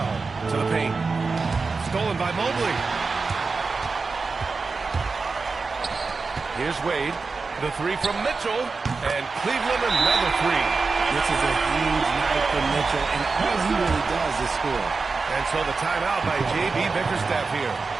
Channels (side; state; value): left; quieter; 4.3 dB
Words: to the paint. Stolen by Mobley. Here's Wade. The three from Mitchell. And Cleveland another three. This is a huge night for Mitchell, and all he really does is score. And so the timeout by J.B. Bickerstaff here.